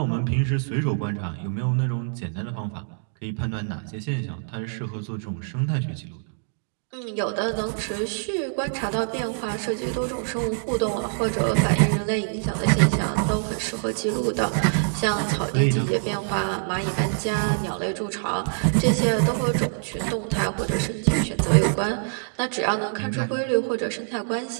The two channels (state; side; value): silent; left; digital silence